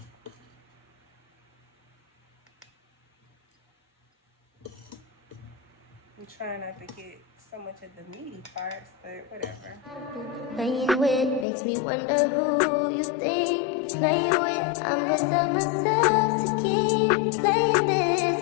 I'm trying not to get so much of the meaty parts, but whatever. Playing with makes me wonder who you think you're playing with. I'm beside myself to keep playing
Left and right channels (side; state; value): right; drops out; at 11.5 s